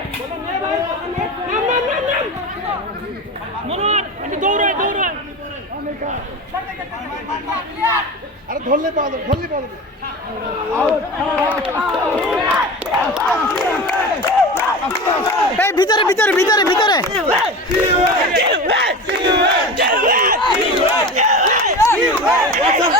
মনোহর একটু দৌড়ায় আরে ধরলে পাওয়া যাবে এই ভিতরে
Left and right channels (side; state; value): both; normal; correlation 0.30